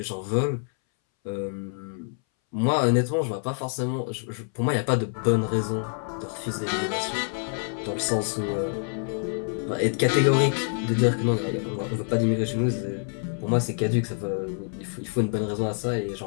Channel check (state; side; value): silent; right; 61 dB below the other